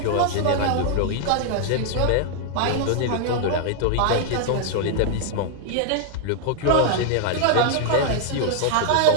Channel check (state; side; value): different; both; correlation -0.01